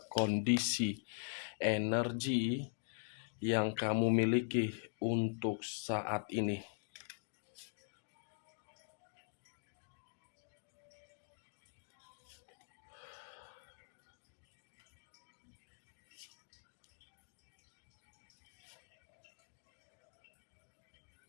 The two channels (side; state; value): right; silent; digital silence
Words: kondisi energi yang kamu miliki untuk saat ini.